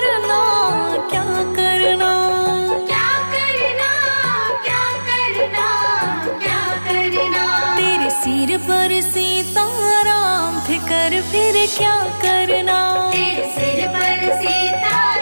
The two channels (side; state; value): both; inverted; correlation -1.00